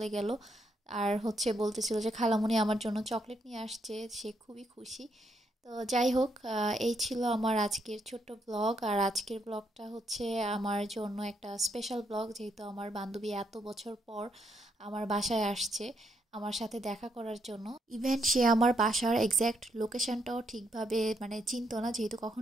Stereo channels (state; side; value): normal; both; correlation 0.77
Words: গেল। আর হচ্ছে বলতেছিল যে খালামণি আমার জন্য চকলেট নিয়ে আসছে, সে খুবই খুশি। তো যাই হোক, এই ছিল আমার আজকের ছোট্ট ব্লগ। আর আজকের ব্লগটা হচ্ছে আমার জন্য একটা স্পেশাল ব্লগ, যেহেতু আমার বান্ধবী এত বছর পর আমার বাসায় আসছে আমার সাথে দেখা করার জন্য। ইভেন সে আমার বাসার এক্স্যাক্ট লোকেশনটাও ঠিকভাবে মানে চিনতো না, যেহেতু